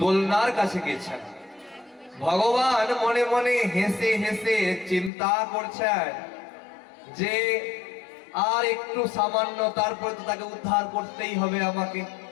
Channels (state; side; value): drops out; right; at 5.1 s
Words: কাছে গেছেন। ভগবান মনে মনে হেসে হেসে চিন্তা করছেন যে আর একটু সামান্য, তারপরে তো তাকে উদ্ধার করতেই হবে আমাকে।